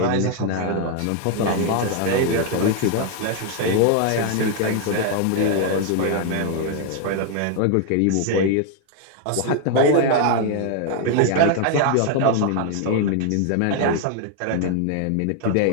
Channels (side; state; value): both; different; correlation 0.00